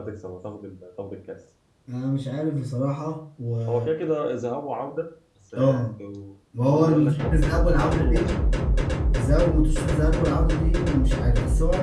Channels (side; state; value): both; identical; correlation 1.00